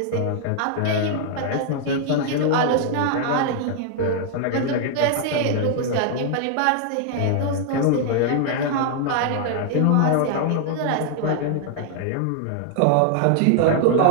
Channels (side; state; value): both; different; correlation 0.00